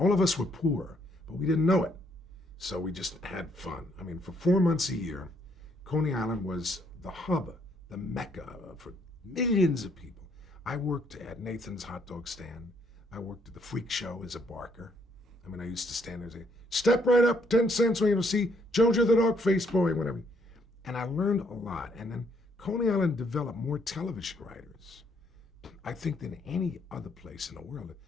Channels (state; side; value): normal; both; correlation 0.69